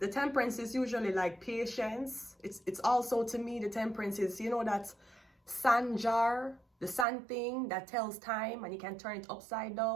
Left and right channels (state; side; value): drops out; left; at 7.1 s